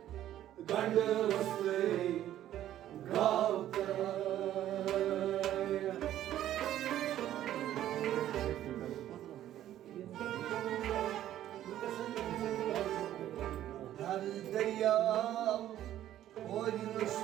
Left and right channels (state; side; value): quieter; left; 12.3 dB